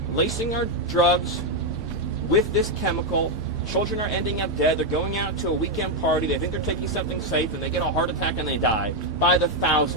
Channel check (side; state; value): both; normal; correlation 0.02